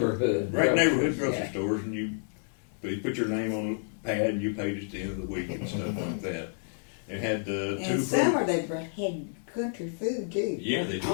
Right, groceries, neighborhood grocery yeah. stores, and you put your name on a pad and you paid at the end of the week and stuff like that. It had two And summer they had country food too. Yeah, they did.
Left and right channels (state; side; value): silent; right; digital silence